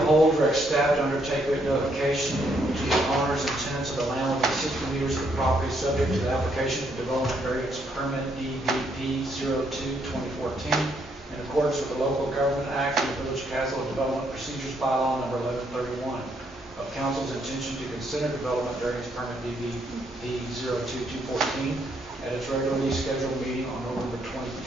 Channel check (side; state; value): both; normal; correlation 0.73